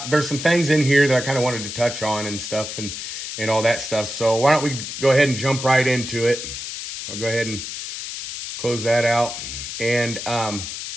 there's some things in here that I kind of wanted to touch on and stuff and all that stuff. So why don't we go ahead and jump right into it. I'll go ahead and close that out. And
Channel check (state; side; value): noise; left; hiss, 7 dB below the sound